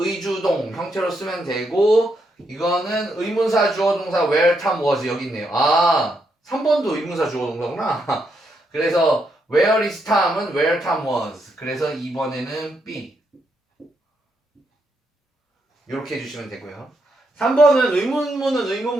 형태로 쓰면 되고 이거는 의문사 주어동사 where Tom was 여기 있네요. 아 3번도 의문사 주어동사구나. 그래서 where is Tom은 where Tom was 그래서 2번에는 B 이렇게 해주시면 되고요. 3번은 의문문은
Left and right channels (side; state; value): both; normal; correlation 0.80